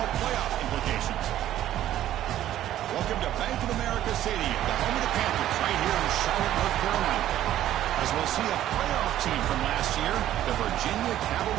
playoff implications. Welcome to Bank of America Stadium, the home of the Panthers, right here in Charlotte, North Carolina. As we'll see a playoff team from last year, the Virginia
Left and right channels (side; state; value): left; quieter; 12.6 dB